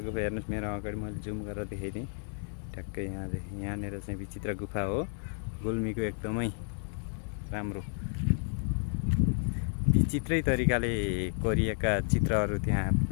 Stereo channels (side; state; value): right; silent; 57 dB below the other